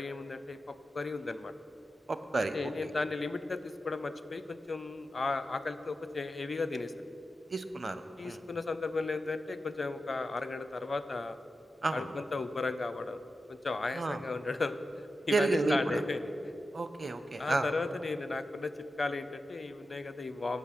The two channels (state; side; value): normal; both; correlation 0.91